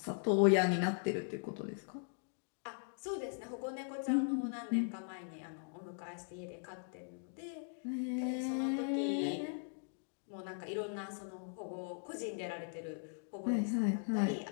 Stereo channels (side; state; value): right; silent; digital silence